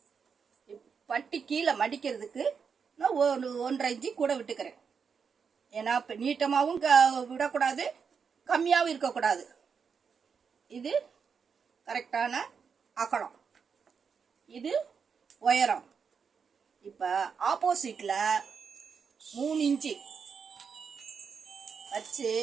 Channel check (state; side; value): quieter; left; 6.2 dB